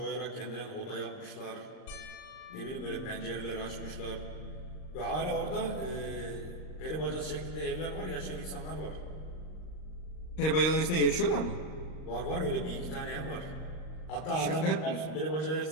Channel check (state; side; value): late; right; 39 ms